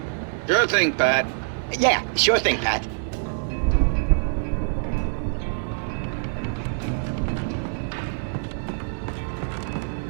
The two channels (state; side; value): silent; left; digital silence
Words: Sure thing, Pat. Yeah, sure thing, Pat.